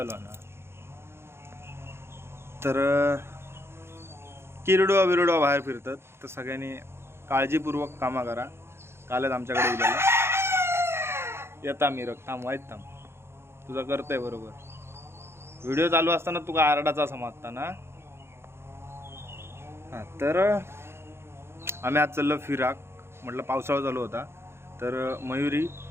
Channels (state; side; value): late; left; 0.12 ms